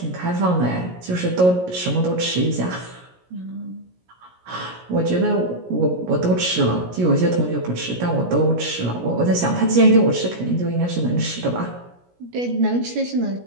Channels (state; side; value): late; left; 17 ms